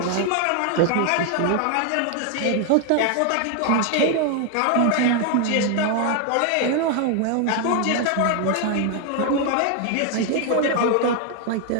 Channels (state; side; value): different; both; correlation 0.01